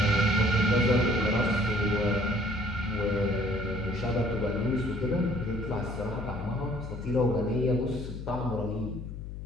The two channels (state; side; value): noise; left; hum, 9 dB below the sound